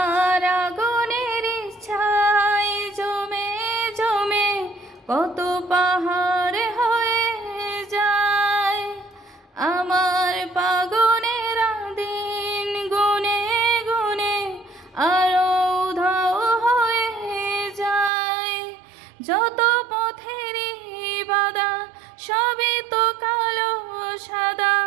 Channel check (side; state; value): left; drops out; at 18.1 s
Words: আগুনের ছাই জমে জমে কত পাহাড় হয়ে যায়। আমার পাগলের দিন গুনে গুনে আরো উধাও হয়ে যায়। যত পথেরই বাধা সবই তো কালো সাদা,